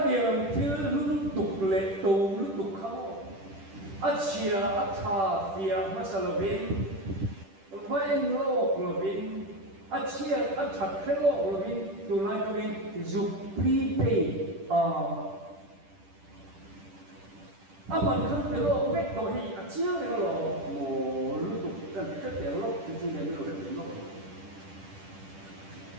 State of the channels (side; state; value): left; late; 10 ms